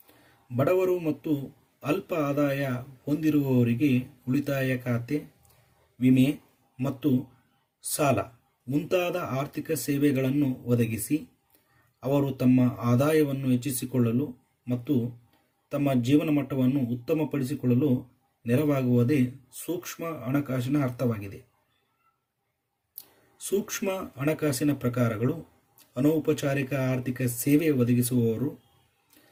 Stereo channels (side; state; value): both; identical; correlation 1.00